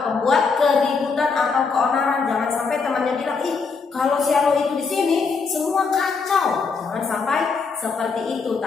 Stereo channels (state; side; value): quieter; right; 4.9 dB